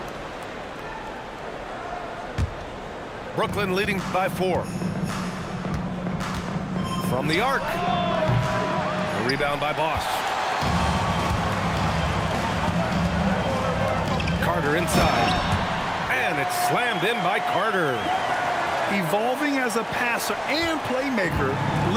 Brooklyn leading by 4. From the arc. A rebound by Boss. Carter inside. And it's slammed in by Carter. Evolving as a passer and playmaker,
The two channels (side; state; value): both; identical; correlation 1.00